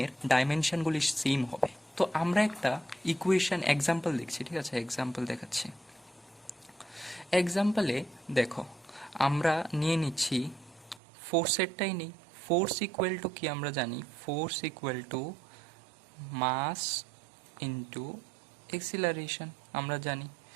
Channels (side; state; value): left; drops out; at 11.0 s